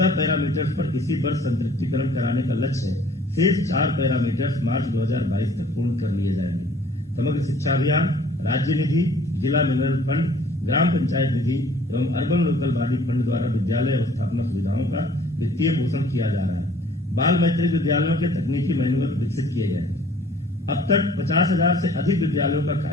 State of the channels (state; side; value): normal; both; correlation 0.54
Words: पैरामीटर्स पर इसी वर्ष संतृप्तिकरण कराने का लक्ष्य है। शेष 4 पैरामीटर्स मार्च 2022 तक पूर्ण कर लिए जाएंगे। समग्र शिक्षा अभियान, राज्य निधि, जिला मिनरल फंड, ग्राम पंचायत निधि एवं अर्बन लोकल बॉडी फंड द्वारा विद्यालय अवस्थापना सुविधाओं का वित्तीय पोषण किया जा रहा है। बाल मैत्रिक विद्यालयों के तकनीकी मैनुअल विकसित किए गए हैं। अब तक 50,000 से अधिक विद्यालयों का